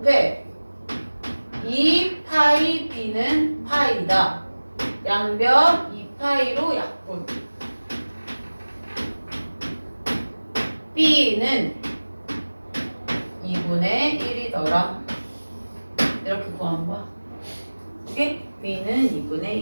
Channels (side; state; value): both; inverted; correlation -1.00